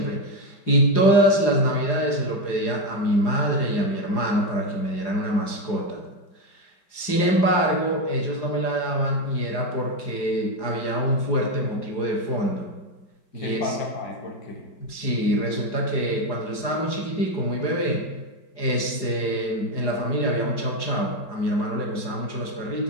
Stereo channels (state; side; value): late; right; 4.9 ms